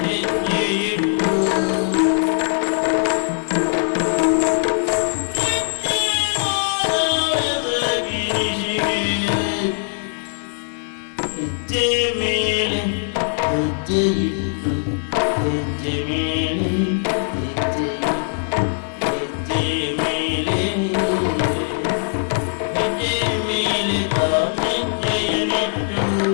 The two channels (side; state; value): right; silent; digital silence